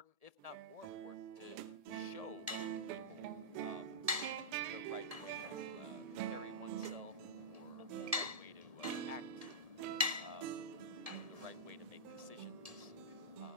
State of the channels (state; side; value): late; left; 1.7 ms